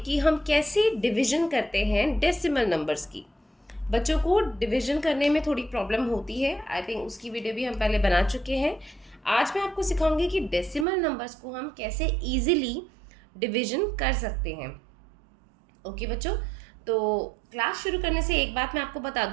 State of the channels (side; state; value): left; drops out; at 10.9 s